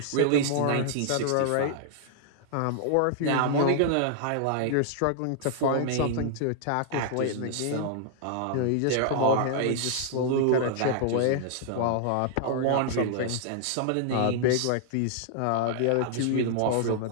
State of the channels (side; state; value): both; different; correlation -0.01